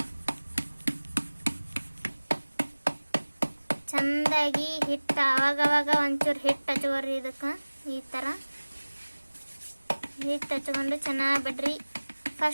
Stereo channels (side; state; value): both; inverted; correlation -1.00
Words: ಚಂದಾಗಿ ಹಿಟ್ಟು ಅವಾಗವಾಗ ಒಂಚೂರು ಹಿಟ್ಟು ಹಚ್ಕೋರಿ. ಇದಕ್ಕೆ ಈ ಥರ ಹಿಟ್ಟು ಹಚ್ಕೊಂಡು ಚೆನ್ನಾಗಿ ಬಿಡ್ರಿ.